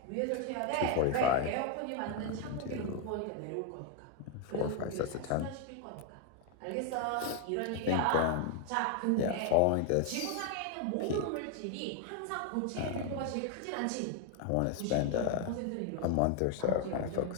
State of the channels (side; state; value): both; different; correlation 0.01